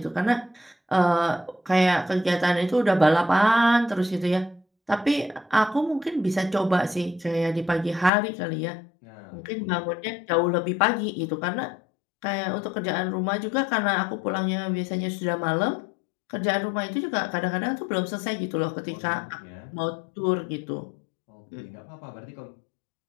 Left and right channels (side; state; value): right; drops out; at 8.1 s